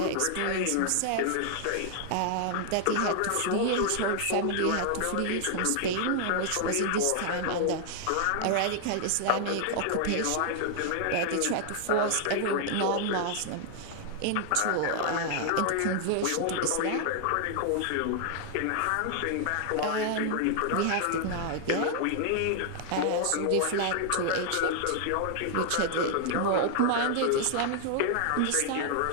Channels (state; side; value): different; both; correlation 0.00